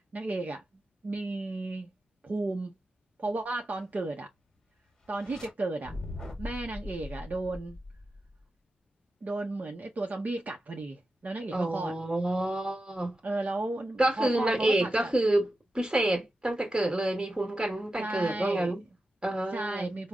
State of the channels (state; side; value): normal; both; correlation 0.91